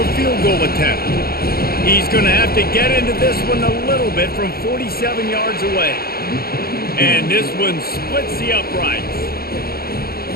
a field goal attempt. He's going to have to get into this one a little bit from 47 yards away. And this one splits the uprights.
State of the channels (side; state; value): right; late; 0.45 ms